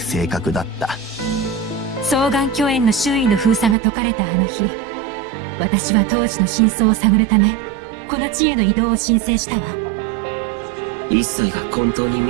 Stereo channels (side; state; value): left; drops out; at 3.8 s